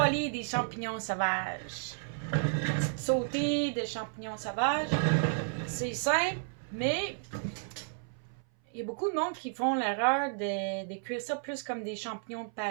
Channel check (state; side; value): silent; left; 56 dB below the other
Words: des champignons sauvages. Sauter des champignons sauvages. C'est simple, mais il y a beaucoup de monde qui font l'erreur de cuire ça plus comme des champignons de